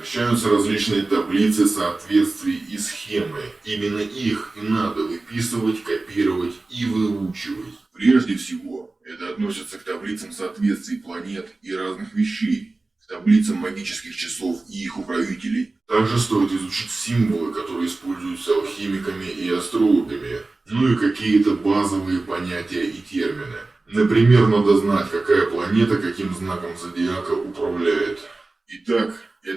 различные таблицы соответствий и схемы. Именно их и надо выписывать, копировать и выучивать. Прежде всего, это относится к таблицам соответствий планет и разных вещей, к таблицам магических часов и их управителей. Также стоит изучить символы, которые используются алхимиками и астрологами, ну и какие-то базовые понятия и термины. Например, надо знать, какая планета каким знаком зодиака управляет. Итак,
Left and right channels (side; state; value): left; quieter; 3.3 dB